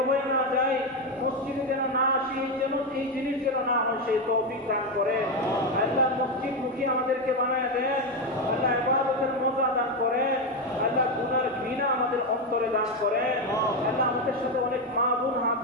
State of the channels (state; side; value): normal; both; correlation 0.09